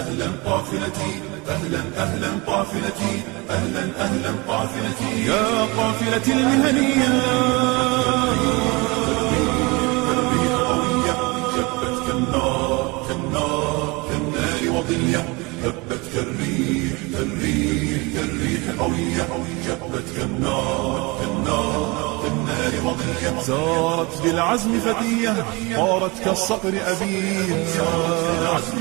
قافلتي أهلا أهلا قافلتي أهلا أهلا قافلتي يا قافلتي المهنية. الريح قوية، شبت كالنار كالنار كالنار وضية. هبت كالريح كالريح كالريح قوية شبت كالنار كالنار كالنار وضية سارت بالعزم فتية طارت كالصقر أبية سارت بالعزم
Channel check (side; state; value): left; quieter; 26.2 dB